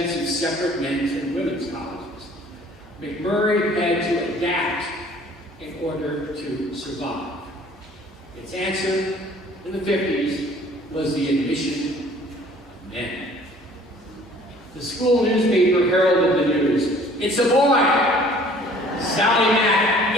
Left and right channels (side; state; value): both; normal; correlation 0.53